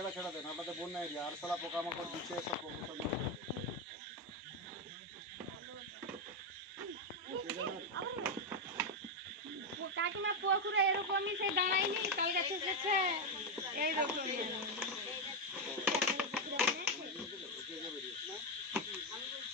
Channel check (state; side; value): normal; both; correlation 0.06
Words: দেন, আপনাদের বন্যা এরিয়া আর সালা পোকামাকড় দিচ্ছে সব প্রবলেম। কাকিমা পুকুরে এরকমই সেই দাঁড়ায়নি, তাল গাছে এসেছে এইরকমই।